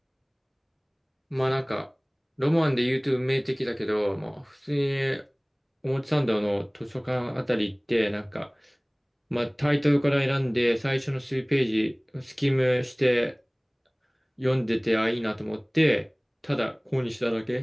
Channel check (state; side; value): identical; both; correlation 1.00